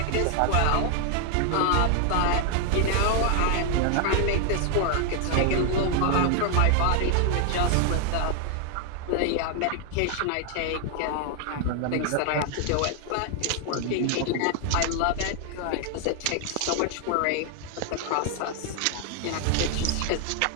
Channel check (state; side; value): different; both; correlation 0.00